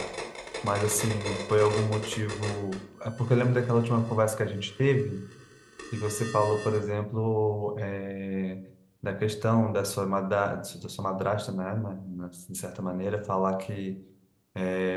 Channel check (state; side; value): identical; both; correlation 1.00